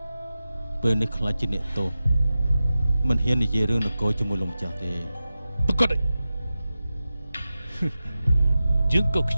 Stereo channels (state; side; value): inverted; both; correlation -0.93